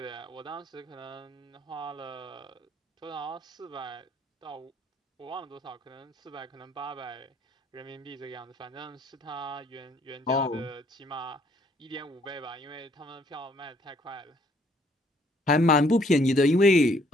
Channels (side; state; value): both; normal; correlation 0.65